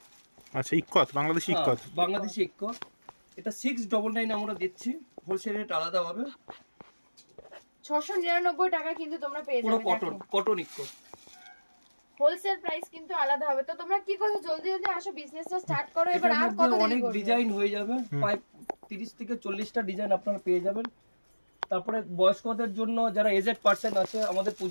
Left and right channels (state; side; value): inverted; both; correlation -1.00